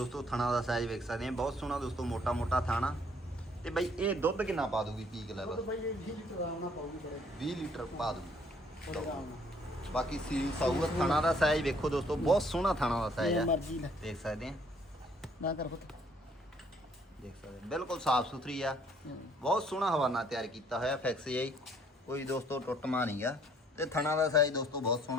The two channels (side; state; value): both; normal; correlation 0.62